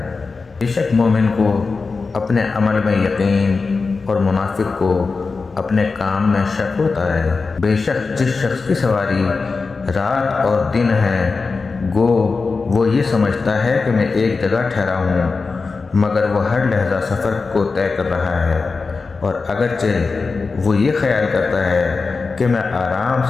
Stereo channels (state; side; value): quieter; right; 4.3 dB